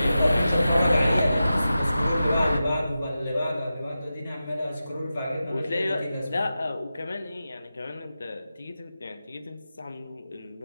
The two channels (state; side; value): inverted; both; correlation -0.92